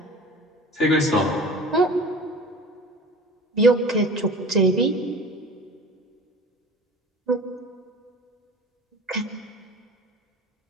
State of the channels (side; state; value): both; normal; correlation 0.40